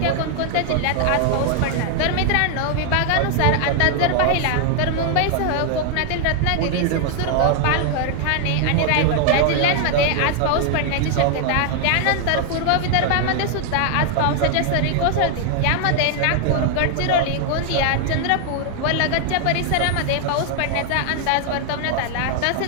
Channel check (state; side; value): different; both; correlation 0.00